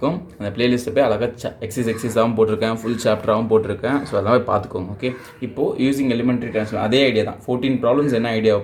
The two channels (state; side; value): identical; both; correlation 1.00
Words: அந்த ப்ளேலிஸ்ட்டை போய் அழகாக எக்ஸசைஸாகவும் போட்டிருக்கேன், ஃபுல் சாப்டராகவும் போட்டிருக்கேன். ஸோ அதெல்லாம் போய் பார்த்துக்கோங்க. ஓகே, இப்போது யூஸிங் எலிமெண்ட்ரி ட்ரான்ஸ்ஃபார்ம் அதே ஐடியா தான். 14 ப்ராப்ளம்ஸ் என்ன ஐடியாவை